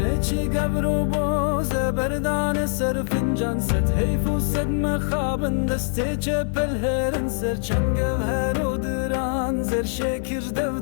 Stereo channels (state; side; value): silent; right; 60 dB below the other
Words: چی گبر و باز بردان سر فنجان ست حیف و صد مخابن دسته چپل هرن سر چنگ هر و دران زر شکر